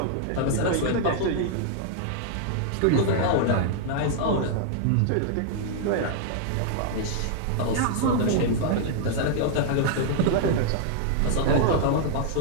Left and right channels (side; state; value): both; different; correlation -0.01